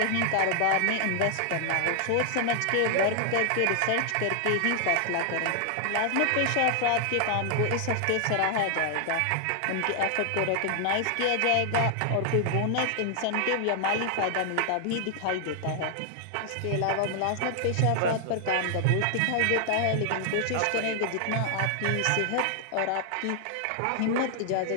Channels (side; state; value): both; different; correlation 0.00